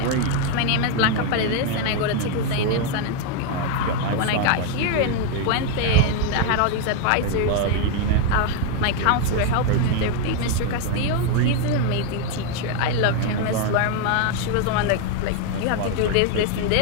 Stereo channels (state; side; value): different; both; correlation 0.01